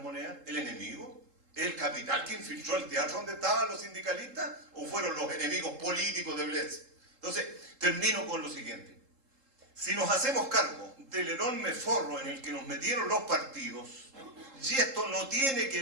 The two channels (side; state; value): left; late; 3.7 ms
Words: monedas? ¿El enemigo? ¿El capital que infiltró el teatro donde estaban los sindicalistas? ¿O fueron los enemigos políticos de Bles? Entonces, termino con lo siguiente. Si nos hacemos cargo del enorme forro en el que nos metieron los partidos, y esto no tiene que